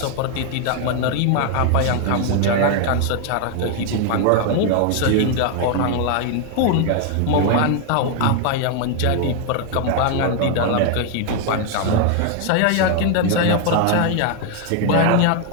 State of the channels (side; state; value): both; different; correlation 0.00